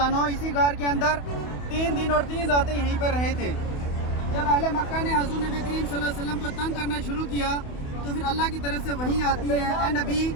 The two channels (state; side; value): late; right; 28 ms